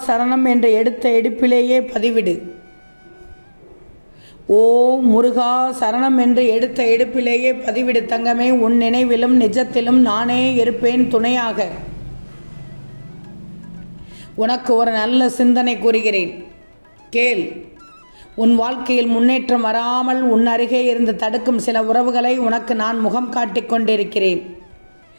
சரணம் என்ற எடுத்த எடுப்பிலேயே பதிவிடு. ஓம் முருகா சரணம் என்று எடுத்த எடுப்பிலேயே பதிவிடு தங்கமே. உன் நினைவிலும் நிஜத்திலும் நானே இருப்பேன் துணையாக. உனக்கு ஒரு நல்ல சிந்தனை கூறுகிறேன், கேள். உன் வாழ்க்கையில் முன்னேற்றம் வராமல் உன் அருகே இருந்து தடுக்கும் சில உறவுகளை உனக்கு நான் முகம் காட்டிக் கொண்டிருக்கிறேன்.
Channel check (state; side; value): inverted; both; correlation -1.00